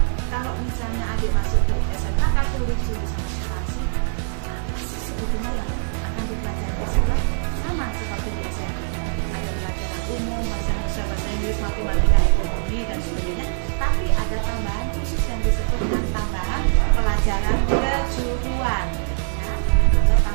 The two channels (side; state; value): left; silent; 62 dB below the other